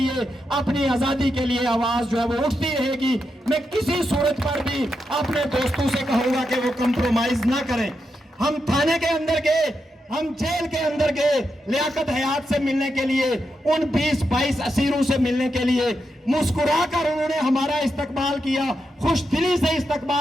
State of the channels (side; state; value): both; normal; correlation 0.85